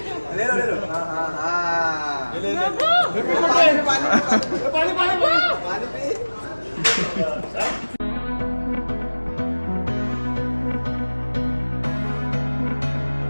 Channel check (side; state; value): both; inverted; correlation -1.00